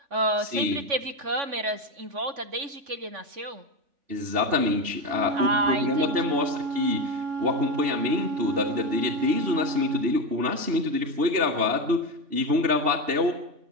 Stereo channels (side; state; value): left; late; 3.5 ms